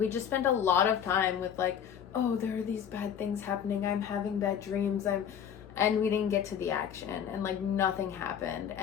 just spent a lot of time with oh, there are these bad things happening, I'm having bad dreams, and we didn't get to the action, and nothing happened.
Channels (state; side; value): quieter; right; 8.5 dB